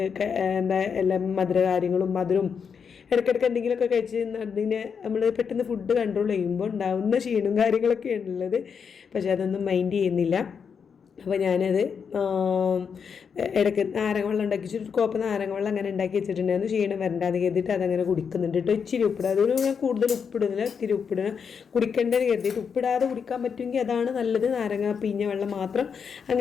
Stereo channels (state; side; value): quieter; right; 6.5 dB